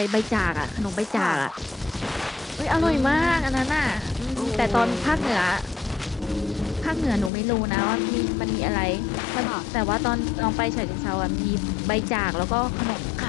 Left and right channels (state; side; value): drops out; right; at 7.3 s